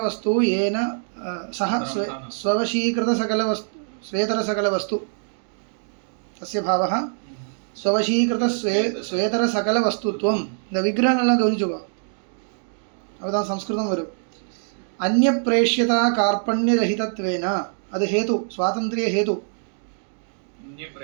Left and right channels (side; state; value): left; silent; digital silence